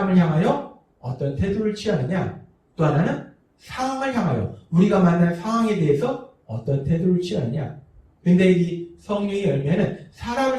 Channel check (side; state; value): both; identical; correlation 1.00